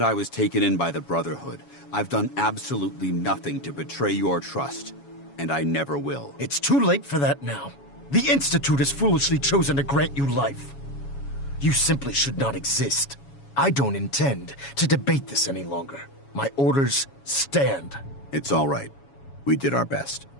I was taken in by the Brotherhood, I've done absolutely nothing to betray your trust, and I never will. It's too late for that now. The Institute has foolishly chosen to grant you life. You simply should not exist. I don't intend to debate this any longer. My orders stand. It's all right. We did our best.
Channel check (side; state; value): right; late; 7.2 ms